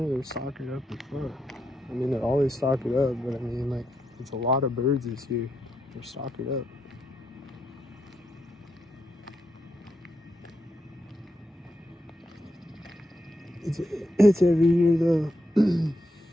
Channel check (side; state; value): both; normal; correlation 0.83